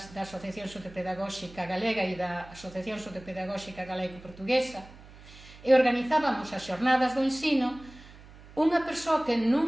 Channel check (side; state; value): right; noise; hum, 20 dB below the sound